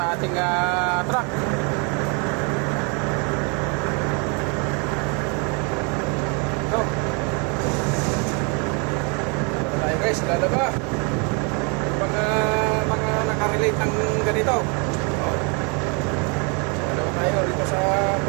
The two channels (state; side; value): quieter; left; 33.7 dB